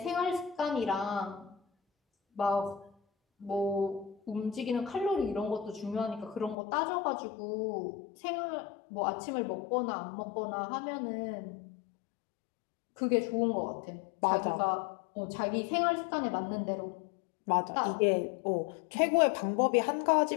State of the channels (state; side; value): drops out; right; at 6.6 s